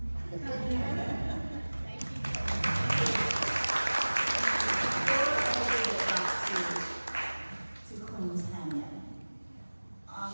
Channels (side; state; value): both; inverted; correlation -1.00